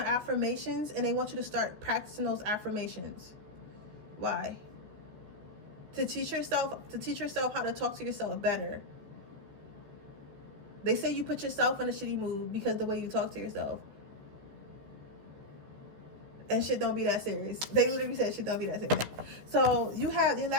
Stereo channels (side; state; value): left; late; 14 ms